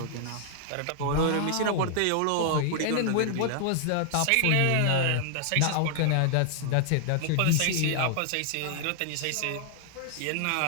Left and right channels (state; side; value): different; both; correlation -0.01